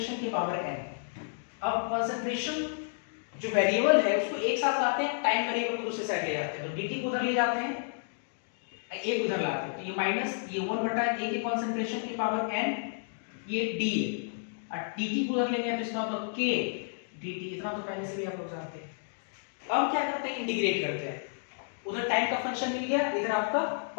के पावर n। अब कॉन्सेंट्रेशन जो वेरिएबल है उसको एक साथ लाते हैं, टाइम वेरिएबल को दूसरे साइड ले जाते हैं, तो dt को उधर ले जाते हैं, a को उधर लाते हैं, तो ये माइनस ये 1 बटा a के कॉन्सेंट्रेशन की पावर n, ये d है, और dt को उधर लेंगे तो इसका मतलब k dt, इतना तो पहले से भी आप लोग जानते हैं। अब क्या करते हैं, इंटीग्रेट करते हैं, उधर टाइम का फंक्शन मिल गया, इधर आपका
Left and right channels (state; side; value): silent; right; digital silence